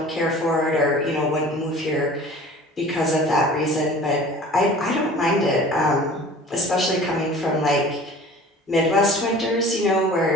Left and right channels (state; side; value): normal; both; correlation 0.44